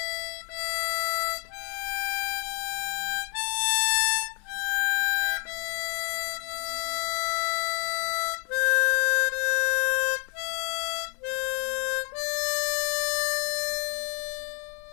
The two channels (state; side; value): quieter; right; 39.1 dB